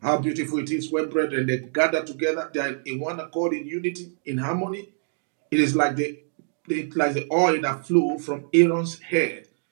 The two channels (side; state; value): left; silent; digital silence